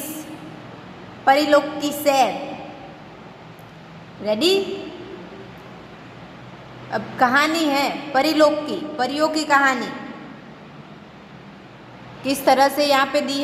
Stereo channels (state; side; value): identical; both; correlation 1.00